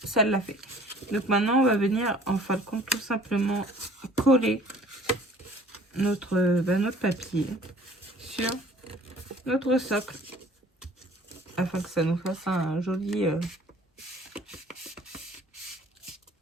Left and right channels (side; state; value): both; normal; correlation 0.52